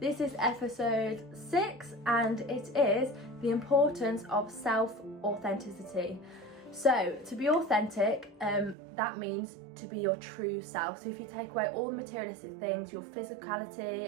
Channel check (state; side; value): drops out; left; at 8.8 s